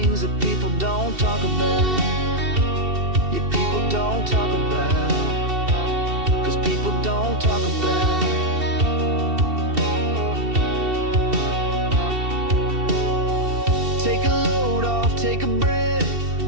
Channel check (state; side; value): late; left; 2.7 ms